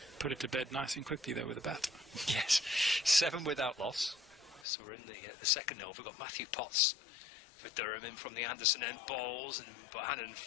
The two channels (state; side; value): drops out; right; at 4.7 s